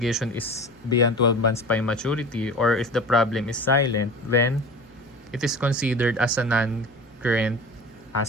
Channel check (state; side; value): normal; both; correlation 0.36